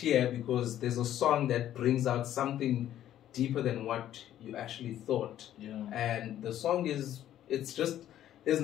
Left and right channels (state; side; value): quieter; right; 11.9 dB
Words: because there's a song that brings out something deeper than what you actually thought. And the song there's